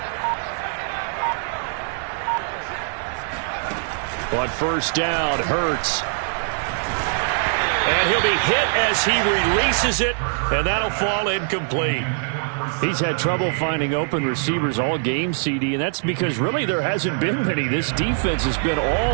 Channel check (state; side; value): silent; left; digital silence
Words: On 1st down, Hurts. And he'll be hit as he releases it, and that'll fall incomplete. He's had trouble finding open receivers all game, CD, and that's because really there hasn't been many. This defense has been